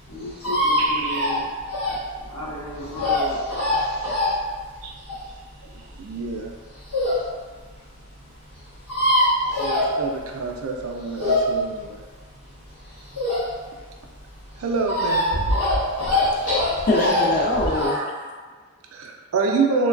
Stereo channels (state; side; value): normal; both; correlation -0.06